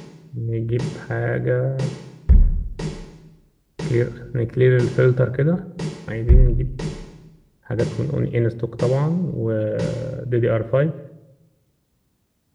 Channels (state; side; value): identical; both; correlation 1.00